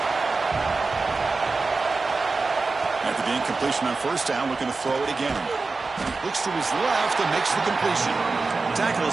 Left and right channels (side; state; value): left; quieter; 3.9 dB